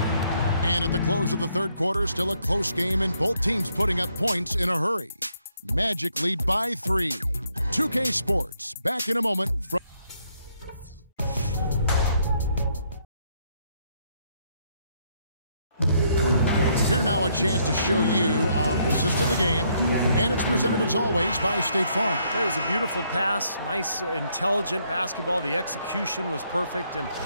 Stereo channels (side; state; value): both; inverted; correlation -0.72